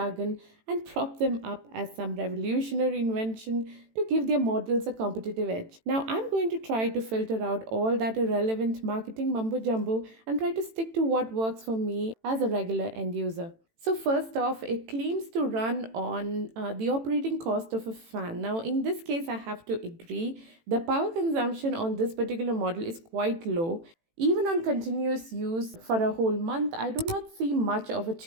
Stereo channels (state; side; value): late; left; 18 ms